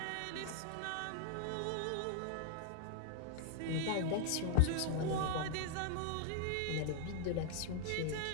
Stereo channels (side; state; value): both; different; correlation 0.00